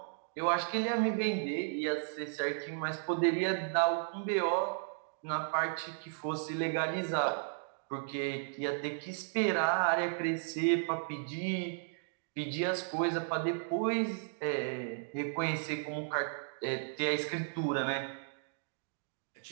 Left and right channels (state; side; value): silent; left; digital silence